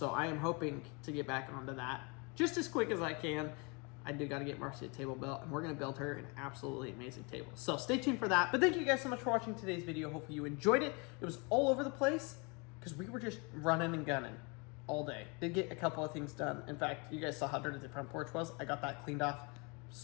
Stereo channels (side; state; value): right; quieter; 30.9 dB